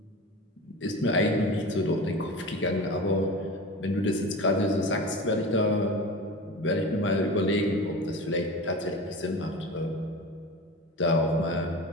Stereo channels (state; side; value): normal; both; correlation 0.31